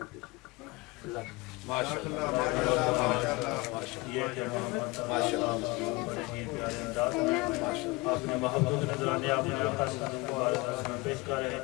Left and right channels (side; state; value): right; quieter; 23.8 dB